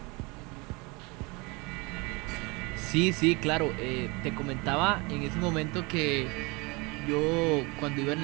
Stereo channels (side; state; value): left; quieter; 26.9 dB